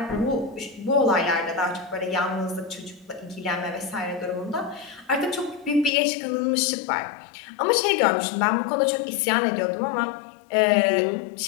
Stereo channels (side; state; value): right; drops out; at 5.9 s